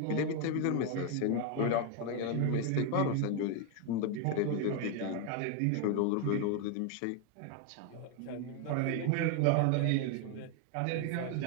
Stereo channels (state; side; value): different; both; correlation 0.01